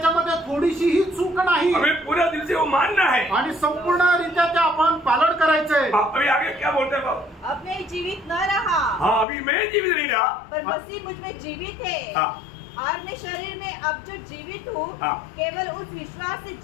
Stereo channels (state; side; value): drops out; right; at 9.2 s